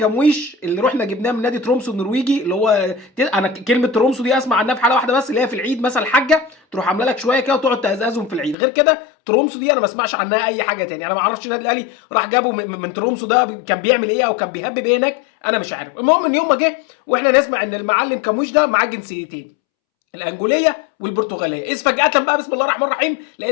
اللي رحنا جبناه من نادي ترومسو النرويجي، اللي هو انا كلمه ترومسو دي اسمع عنها في حاله واحده بس، اللي هي في العيد مثلا الحاجه تروح عامله لك شويه كده وتقعد تهزهم في العيد. غير كده ترومسو دي انا ما اسمعش عنها اي حاجه تاني. انا ما اعرفش النادي الاهلي راح جابه من ترومسو ده كان بيعمل ايه او كان بيهبب ايه هناك، انا مش عارف. المهم ان يوم ما جه واحنا نسمع ان المعلم كموش ده معاه جنسيتين، الانجوليه والبرتغاليه، اذ فجاه بقى بسم الله الرحمن الرحيم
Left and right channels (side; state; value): right; drops out; at 8.6 s